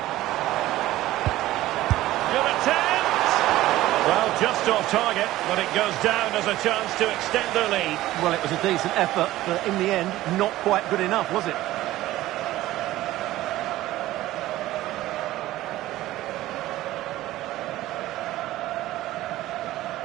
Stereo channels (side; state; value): left; quieter; 15.8 dB